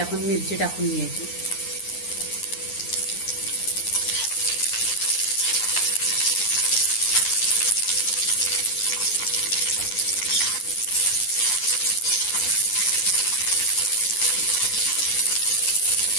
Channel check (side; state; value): right; late; 9.7 ms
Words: मिरची टाकून घ्यायची।